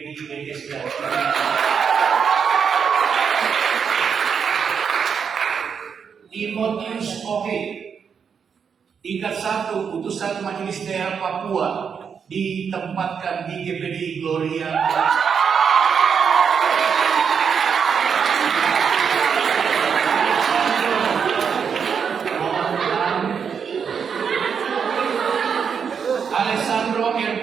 BSD. Timotius Oke, tingkat 1 putusan Majelis Daerah Papua ditempatkan di GPD Gloria. Alessandro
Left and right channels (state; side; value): quieter; left; 6.7 dB